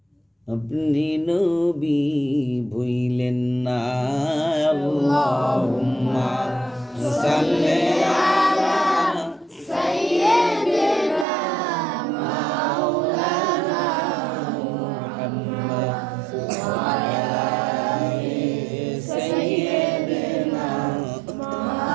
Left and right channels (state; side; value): drops out; left; at 11.2 s